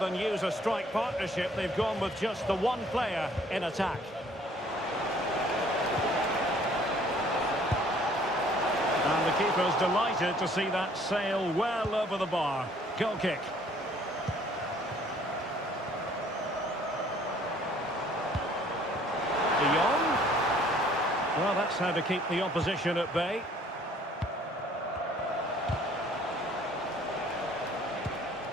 use a strike partnership, they've gone with just the one player in attack. And the keeper's delighted to see that sail well over the bar. Goal kick. De Jong. Well, that's how to keep the opposition at bay.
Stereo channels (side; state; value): both; normal; correlation 0.58